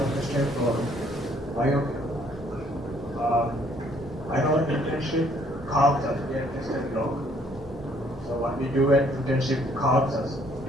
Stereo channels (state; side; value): normal; both; correlation 0.64